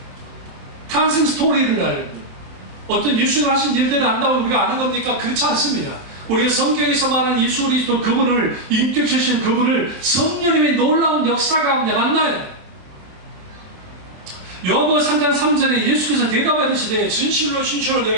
탄생 스토리를 알고 어떤 예수님 하신 일들을 안다고 우리가 아는 겁니까? 그렇지 않습니다. 우리가 성경에서 말하는 예수 그리스도 그분을 인격체신 그분을 성령님의 놀라운 역사 가운데 만나요. 요한복음 3장 3절에 예수께서 대답하시되 진실로 진실로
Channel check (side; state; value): left; late; 27 ms